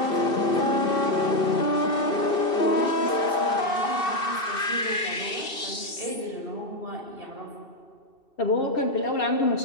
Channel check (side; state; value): right; late; 2.7 ms